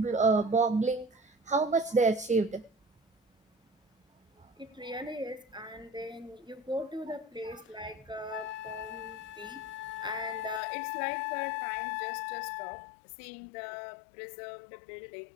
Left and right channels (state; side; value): drops out; right; at 10.6 s